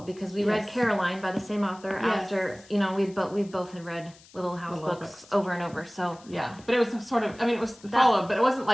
because we read Caroline by the same author after, we both had read Little House books over and over. So yeah, but it was sort of, it was followed, but it wasn't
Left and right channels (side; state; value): left; noise; hiss, 24 dB below the sound